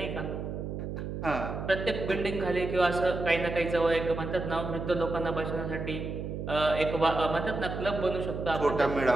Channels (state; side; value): noise; right; hum, 5 dB below the sound